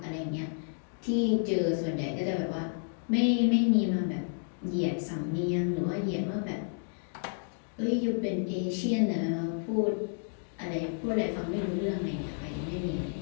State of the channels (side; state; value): right; silent; digital silence